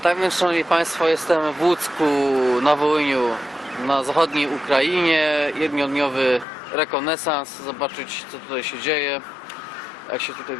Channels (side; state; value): right; drops out; at 6.5 s